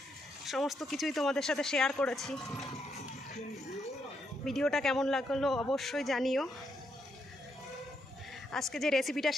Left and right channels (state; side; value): normal; both; correlation 0.78